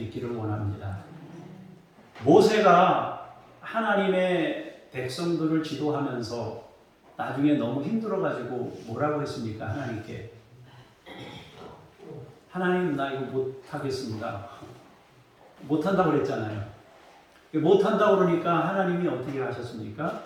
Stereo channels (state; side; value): identical; both; correlation 1.00